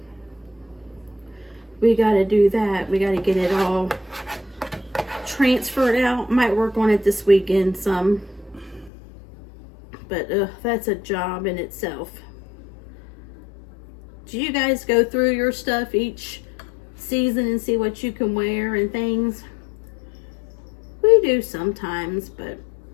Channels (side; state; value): right; drops out; at 8.9 s